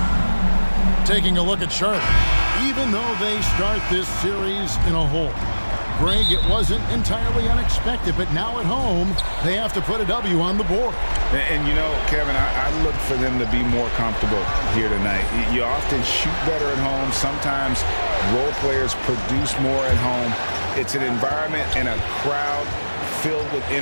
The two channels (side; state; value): both; inverted; correlation -1.00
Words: Taking a look at Charlotte. Even though they start this series in a hole, Greg, it wasn't entirely unexpected, but now at home, they have to put a W on the board. And you know, Kevin, I look for them to be more comfortable here tonight. You often shoot better at home. Sometimes role players produce more at home. It's an environment and a crowd filled with